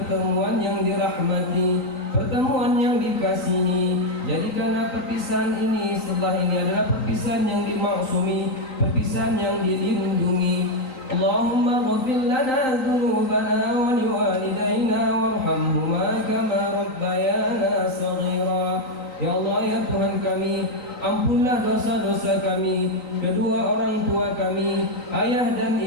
yang dirahmati, pertemuan yang dikasihi. Jadikanlah perpisahan ini setelah ini adalah perpisahan yang dimaksumi, perpisahan yang dilindungi. Allahumma ghfir lana dhunubana wa liwalidayna warhamhuma kama rabbayana saghira. Ya Allah, ya Tuhan kami, ampunlah dosa-dosa kami, kedua orang tua kami, ayah dan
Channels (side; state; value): right; late; 3.9 ms